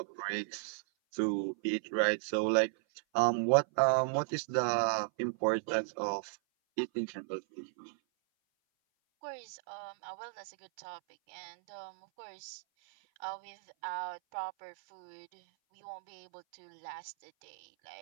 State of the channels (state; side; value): silent; left; 54 dB below the other